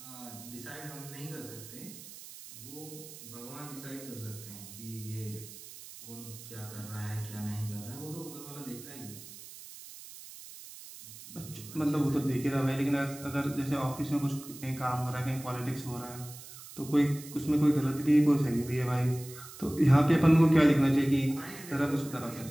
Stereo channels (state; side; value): noise; right; hiss, 15 dB below the sound